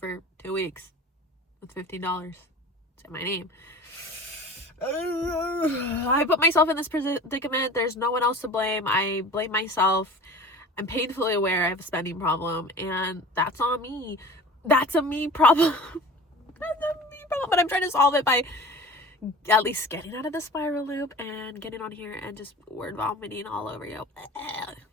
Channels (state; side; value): normal; both; correlation 0.39